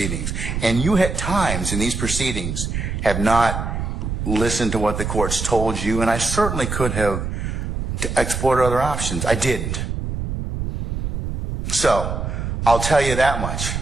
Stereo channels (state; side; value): noise; right; rumble, 3 dB below the sound